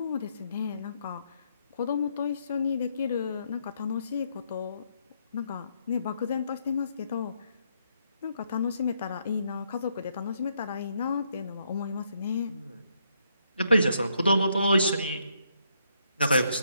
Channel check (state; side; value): inverted; both; correlation -0.74